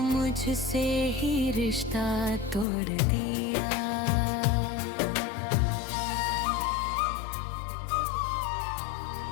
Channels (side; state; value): right; drops out; at 2.7 s